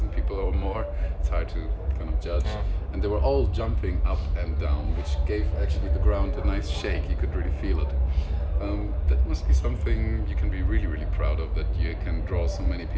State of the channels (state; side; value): identical; both; correlation 1.00